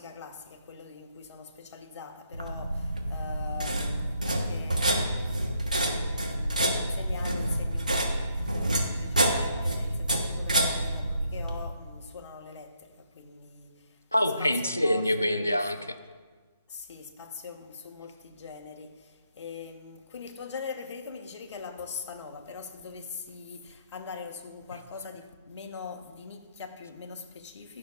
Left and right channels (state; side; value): inverted; both; correlation -0.75